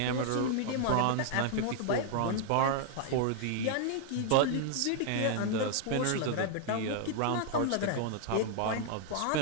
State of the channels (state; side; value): different; both; correlation 0.00